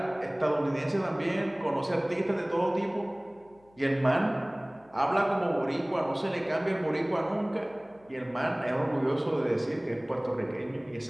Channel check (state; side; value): noise; left; hum, 30 dB below the sound